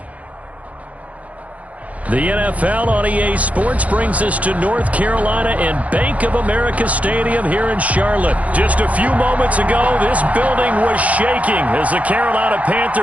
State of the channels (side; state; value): left; late; 0.068 ms